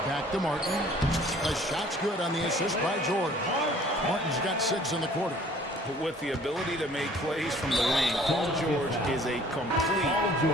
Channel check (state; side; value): normal; both; correlation 0.54